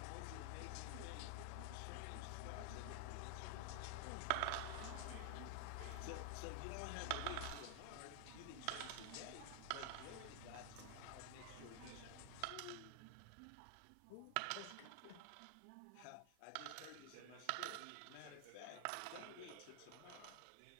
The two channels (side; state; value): both; different; correlation 0.00